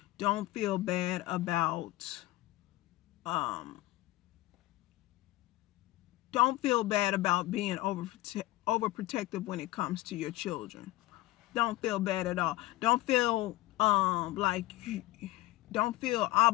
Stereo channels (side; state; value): right; quieter; 18.0 dB